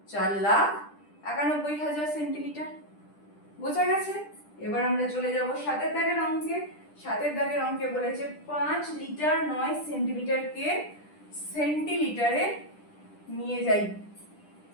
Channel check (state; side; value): late; right; 10 ms